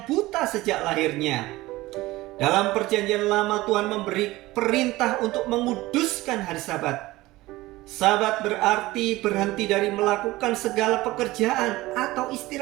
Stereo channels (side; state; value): left; quieter; 18.7 dB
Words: buta sejak lahirnya. Dalam Perjanjian Lama, Tuhan memberi perintah untuk menguduskan hari Sabat. Sabat berarti berhenti dari melakukan segala pekerjaan atau